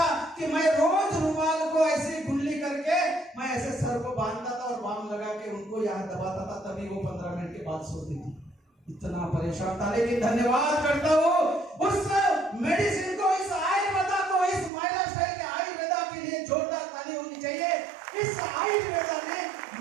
कि मैं रोज रुमाल को ऐसे गुल्ली करके मैं ऐसे सर को बांधता था और बाम लगा के उनको यहाँ दबाता था, तभी वो 15 मिनट के बाद सोती थी। इतना परेशान था। लेकिन धन्यवाद करता हूँ उस मेडिसिन को, इस आयुर्वेदा को, इस महिला स्टाइल के आयुर्वेदा के लिए जोरदार ताली होनी चाहिए। इस आयुर्वेदा ने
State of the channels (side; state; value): left; drops out; at 14.7 s